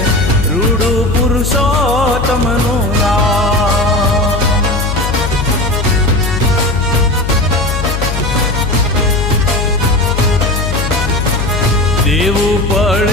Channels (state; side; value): noise; left; hum, 3 dB below the sound